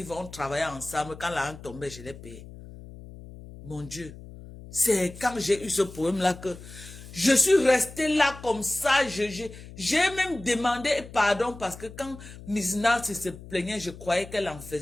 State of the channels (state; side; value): noise; left; hum, 16 dB below the sound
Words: vont travailler ensemble. Quand la rente tombait, je les payais. Mon Dieu. C'est quand j'ai eu ce problème-là que je suis restée là comme ça. J'ai même demandé pardon parce que quand Miss Nancy se plaignait, je croyais qu'elle en